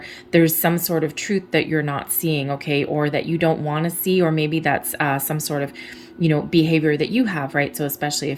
there's some sort of truth that you're not seeing. Okay. Or that you don't want to see, or maybe that's some sort of, you know, behavior that you have, right? So especially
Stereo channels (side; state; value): both; identical; correlation 1.00